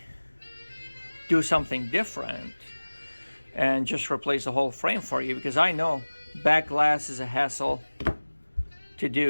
do something different and just replace the whole frame for you? Because I know back glass is a hassle to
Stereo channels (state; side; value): inverted; both; correlation -1.00